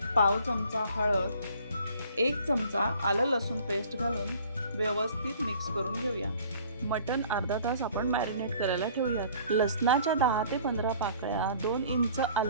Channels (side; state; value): both; inverted; correlation -0.52